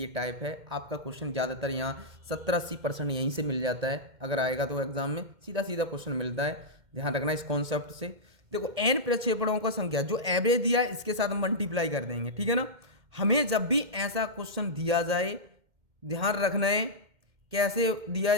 टाइप है आपका क्वेश्चन, ज़्यादातर यहाँ 70-80% यहीं से मिल जाता है, अगर आएगा तो एग्जाम में सीधा सीधा क्वेश्चन मिलता है, ध्यान रखना इस कॉन्सेप्ट से। देखो n प्रक्षेपणों का संख्या जो एवरेज दिया है इसके साथ मल्टीप्लाई कर देंगे, ठीक है ना। हमें जब भी ऐसा क्वेश्चन दिया जाए ध्यान रखना है कैसे दिया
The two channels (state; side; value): late; left; 2.1 ms